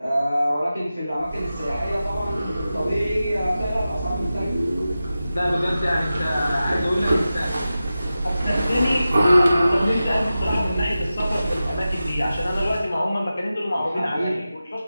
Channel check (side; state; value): both; inverted; correlation -0.93